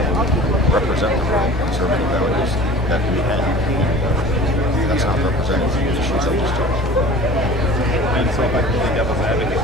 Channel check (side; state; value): both; normal; correlation 0.42